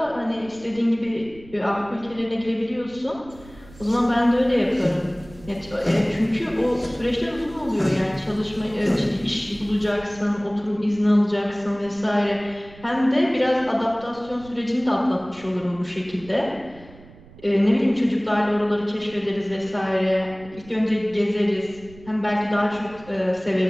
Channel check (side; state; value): right; noise; rumble, 21 dB below the sound